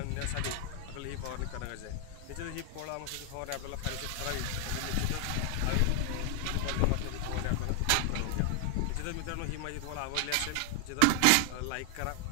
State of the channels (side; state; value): both; different; correlation 0.00